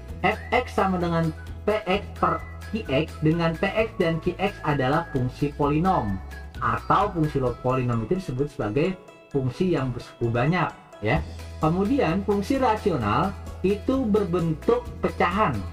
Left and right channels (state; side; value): identical; both; correlation 1.00